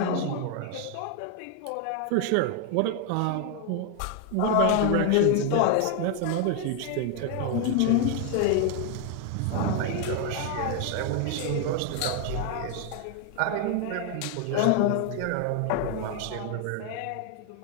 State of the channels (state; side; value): different; both; correlation 0.01